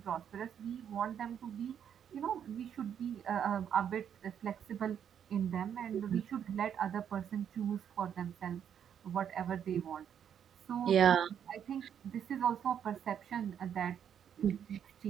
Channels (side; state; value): left; quieter; 8.7 dB